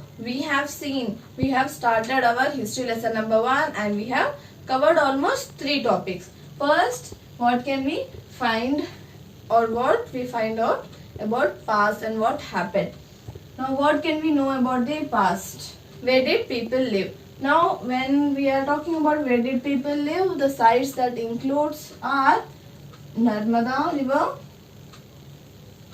we have started our history lesson number 1 and we have covered almost 3 topics. First, what can we find or what we find out about past and what happened. Now what can we know about the past? Where did people live? Now when we are talking about where did people live, the sites that includes are Narmada river,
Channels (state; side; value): identical; both; correlation 1.00